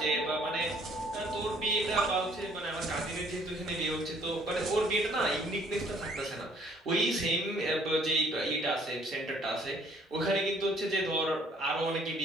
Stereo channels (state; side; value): normal; both; correlation 0.60